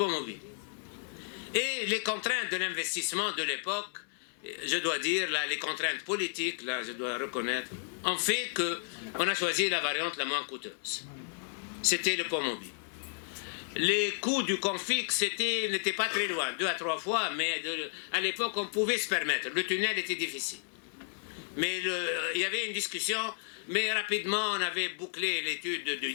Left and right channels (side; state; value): right; silent; 56 dB below the other